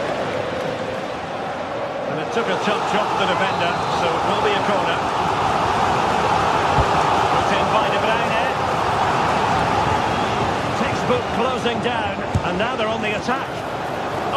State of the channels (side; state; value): both; identical; correlation 1.00